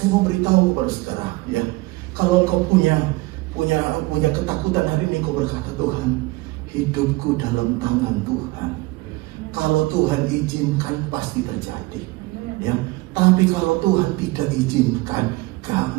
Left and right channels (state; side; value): quieter; left; 21.9 dB